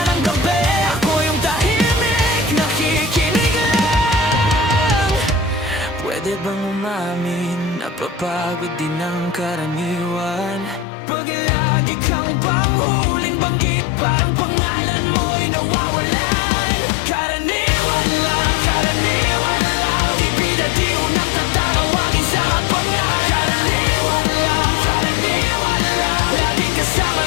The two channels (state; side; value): drops out; right; at 10.9 s